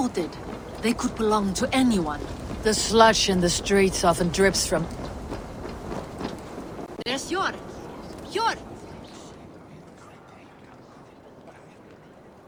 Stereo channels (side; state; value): both; identical; correlation 1.00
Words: They could belong to anyone. The sludge in the streets often drips from... There's Yor! Yor!